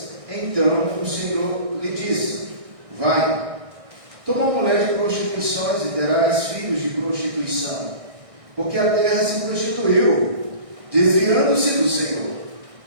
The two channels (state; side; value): late; left; 1.6 ms